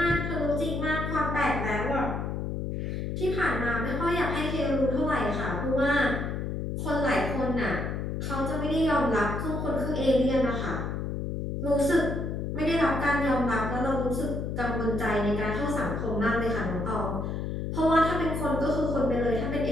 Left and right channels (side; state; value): left; noise; hum, 3 dB below the sound